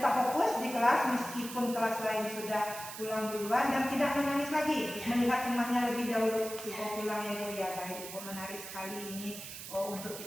fokus di kelas meskipun kelas lain sudah pulang duluan dan tidak menangis lagi melihat temannya lebih dahulu pulang ya Bu ya. Baik Ibu, menarik sekali ini untuk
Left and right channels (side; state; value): right; noise; hiss, 10 dB below the sound